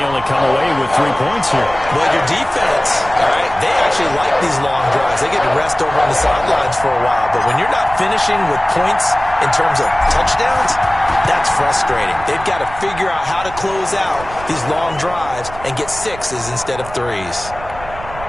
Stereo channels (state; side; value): noise; right; rumble, 15 dB below the sound